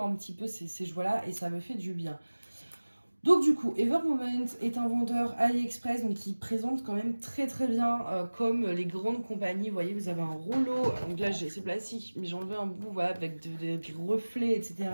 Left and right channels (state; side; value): inverted; both; correlation -1.00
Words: un petit peu ces joies-là et ça me fait du bien. Donc du coup, Ever Moment est un vendeur AliExpress donc qui présente quand même très très bien comme les grandes compagnies. Vous voyez, vous avez un rouleau, donc là c'est plastique, mais j'ai enlevé un bout voilà, avec des reflets, etc.